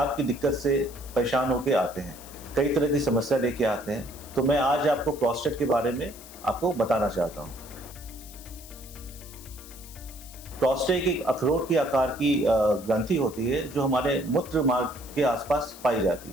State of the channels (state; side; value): noise; left; hiss, 17 dB below the sound